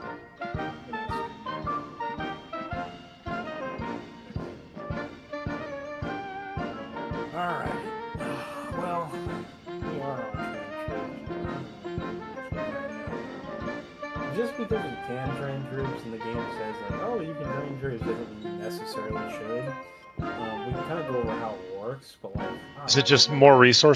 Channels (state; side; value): identical; both; correlation 1.00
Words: Just because you can train troops and the game says like, oh, you can train troops doesn't mean you necessarily should. We can kind of go over how it works, but like, Is it just more